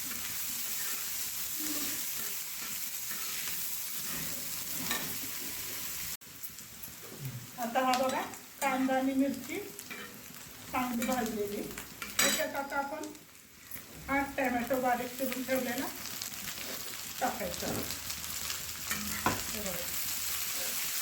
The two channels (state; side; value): identical; both; correlation 1.00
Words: आता हा बघा कांदा आणि मिरची चांगली भाजलेली. त्याच्यात आता आपण 8 टोमॅटो बारीक चिरून ठेवलेला टाकायचा.